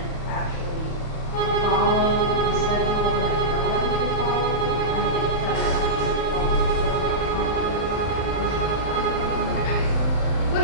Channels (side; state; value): right; late; 38 ms